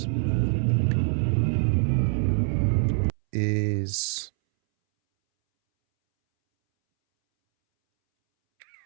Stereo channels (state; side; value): silent; left; 62 dB below the other